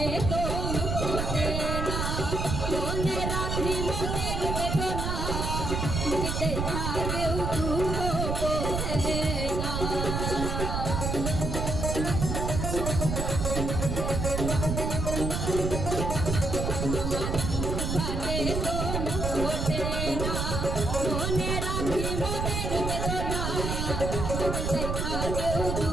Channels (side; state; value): right; noise; rumble, 1 dB below the sound